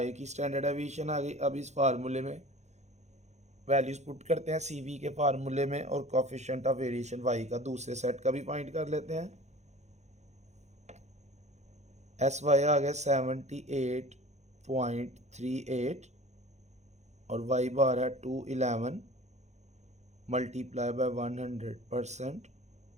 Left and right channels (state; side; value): late; left; 0.33 ms